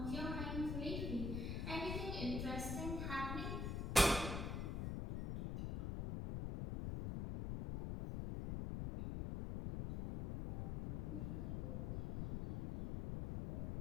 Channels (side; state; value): left; noise; rumble, 1 dB below the sound